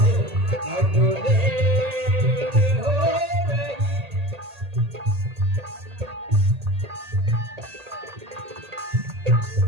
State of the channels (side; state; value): left; late; 1.8 ms